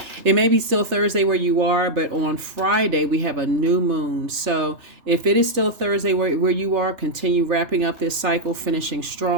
It may be still Thursday where you are, but on Friday we have a new moon. So if it is still Thursday where you are, continue wrapping up this cycle, finishing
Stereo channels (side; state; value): left; late; 3.3 ms